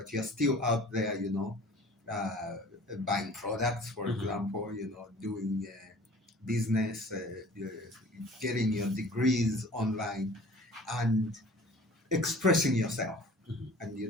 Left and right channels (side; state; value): both; normal; correlation 0.47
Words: you're still out there, you know, buying products, for example, you know, doing business, getting your degrees online, and expressing yourself. And you